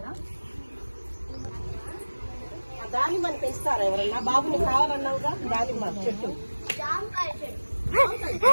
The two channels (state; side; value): inverted; both; correlation -1.00